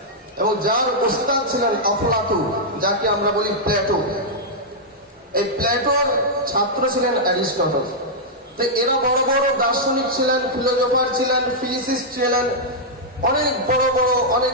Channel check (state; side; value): normal; both; correlation -0.07